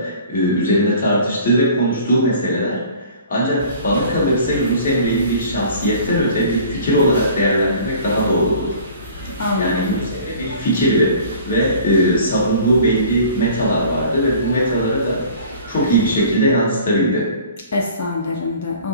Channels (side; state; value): both; inverted; correlation -0.47